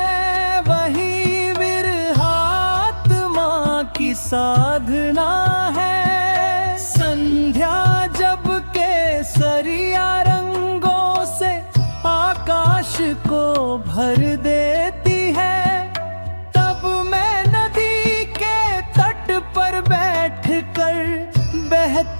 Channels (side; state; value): both; inverted; correlation -1.00